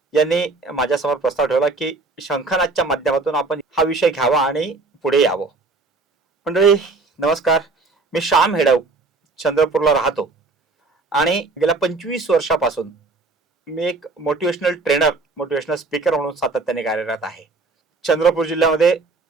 यांनी माझ्यासमोर प्रस्ताव ठेवला की शंखनादच्या माध्यमातून आपण हा विषय घ्यावा आणि पुढे यावं. मंडळी नमस्कार, मी श्याम हेडव चंद्रपूरला राहतो आणि गेल्या 25 वर्षापासून मी एक मोटिवेशनल ट्रेनर, मोटिवेशनल स्पीकर म्हणून सातत्याने कार्यरत आहे. चंद्रपूर जिल्ह्यामध्ये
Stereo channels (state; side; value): quieter; left; 3.7 dB